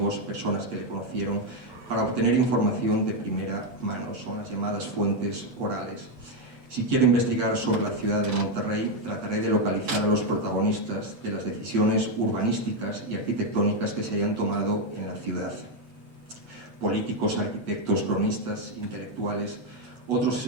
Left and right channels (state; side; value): late; left; 8.2 ms